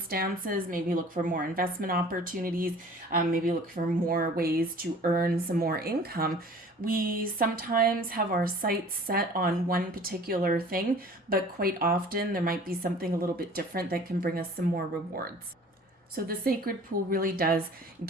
maybe look for more investment opportunities, maybe look for more ways to earn some more income, we sometimes have our sights set on one particular thing, but quite often there might be something a little bit different that can bring us some more rewards. So the sacred pool really does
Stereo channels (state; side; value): normal; both; correlation 0.47